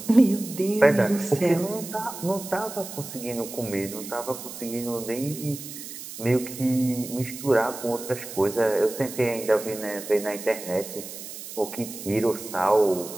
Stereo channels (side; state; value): right; noise; hiss, 11 dB below the sound